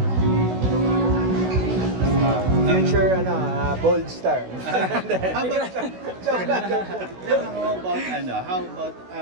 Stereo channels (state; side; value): late; left; 16 ms